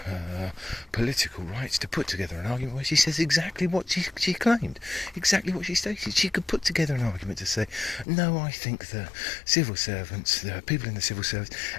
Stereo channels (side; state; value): right; drops out; at 8.1 s